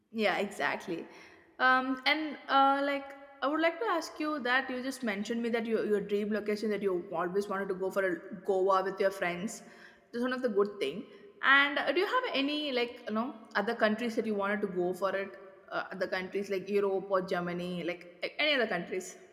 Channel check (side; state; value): both; identical; correlation 1.00